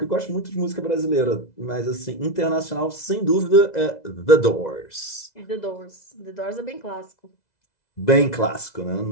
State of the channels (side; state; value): right; late; 2.0 ms